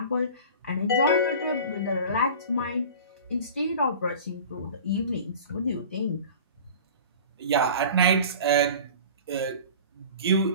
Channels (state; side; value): inverted; both; correlation -0.39